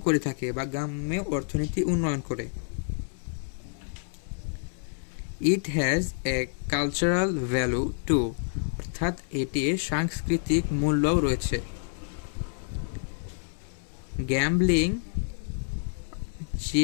করে থাকে বা গ্রাম্য অর্থনীতি উন্নয়ন করে। It has a cultural value too. অর্থাৎ এটির সাংস্কৃতিক মূল্যও রয়েছে। Gambling,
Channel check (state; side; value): silent; right; 59 dB below the other